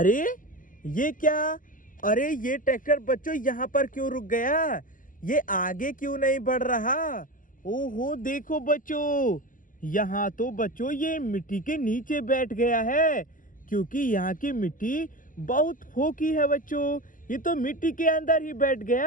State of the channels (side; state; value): right; late; 0.39 ms